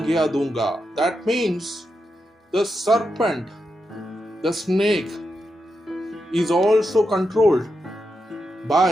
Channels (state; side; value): normal; both; correlation 0.86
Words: दूंगा। That means the serpent, the snake is also controlled